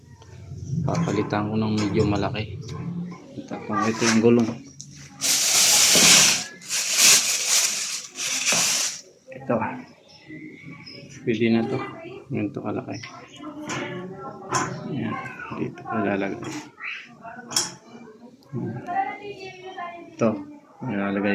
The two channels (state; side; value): identical; both; correlation 1.00